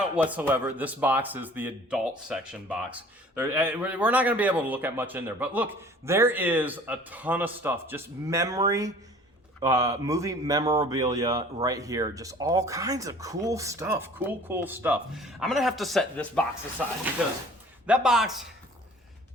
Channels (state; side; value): normal; both; correlation 0.49